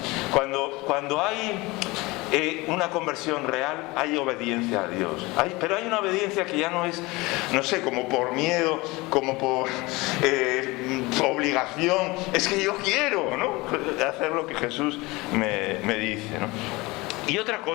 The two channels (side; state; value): right; quieter; 22.6 dB